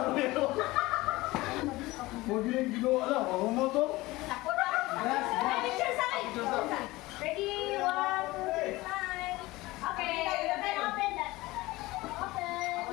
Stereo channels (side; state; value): right; quieter; 19.9 dB